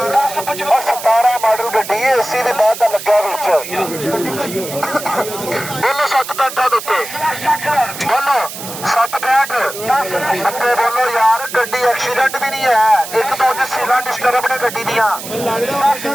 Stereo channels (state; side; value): noise; right; hiss, 10 dB below the sound